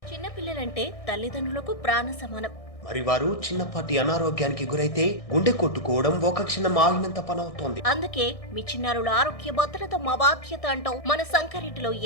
చిన్నపిల్లలంటే తల్లిదండ్రులకు ప్రాణ సమానం. మరి వారు చిన్నపాటి అనారోగ్యానికి గురైతే గుండె కొట్టుకోవడం ఒక క్షణం ఆగినంత పనవుతోంది. అందుకే మీ చిన్నారుల ఆరోగ్య భద్రత మా బాధ్యత అంటూ మన సంగారెడ్డిలో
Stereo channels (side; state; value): right; late; 1.6 ms